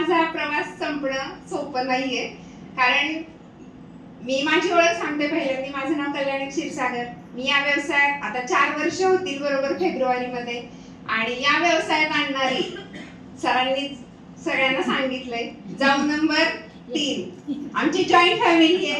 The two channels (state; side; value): identical; both; correlation 1.00